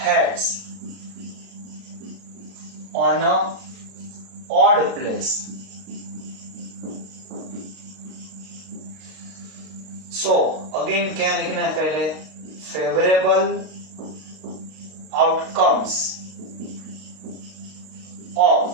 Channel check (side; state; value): left; late; 32 ms